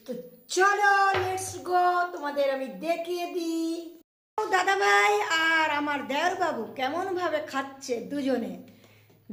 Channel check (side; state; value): both; identical; correlation 1.00